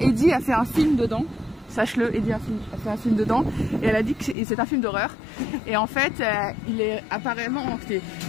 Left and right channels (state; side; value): drops out; right; at 4.4 s